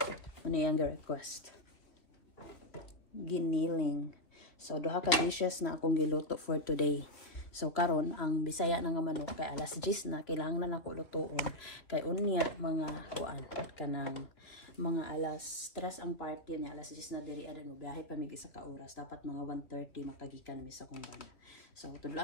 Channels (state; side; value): late; right; 2.8 ms